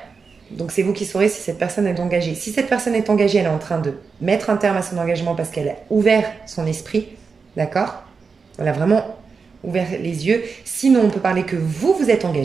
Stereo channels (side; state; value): left; quieter; 5.1 dB